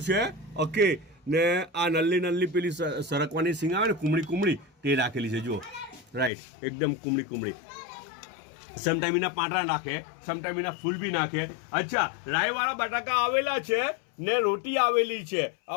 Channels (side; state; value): right; drops out; at 6.3 s